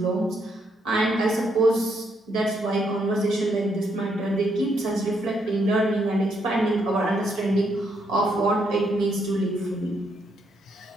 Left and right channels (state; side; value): normal; both; correlation 0.75